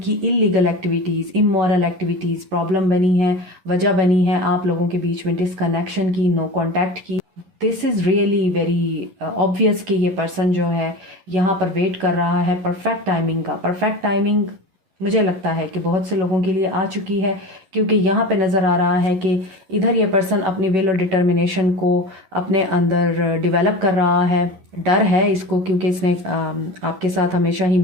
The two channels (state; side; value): late; left; 11 ms